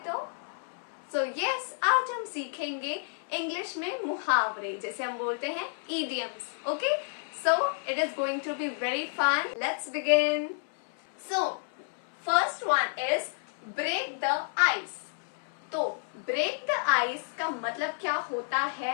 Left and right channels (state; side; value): silent; right; 58 dB below the other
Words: तो यस, आज हम सीखेंगे इंग्लिश में मुहावरे, जैसे हम बोलते हैं idioms. Okay, so it is going to be very fun. Let's begin. So first one is break the ice. तो break the ice का मतलब क्या होता